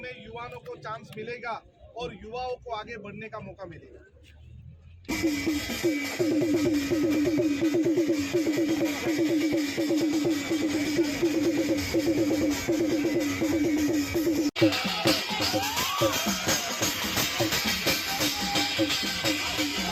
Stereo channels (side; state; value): both; identical; correlation 1.00